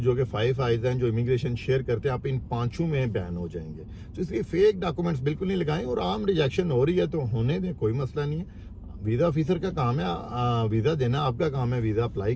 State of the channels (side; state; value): both; identical; correlation 1.00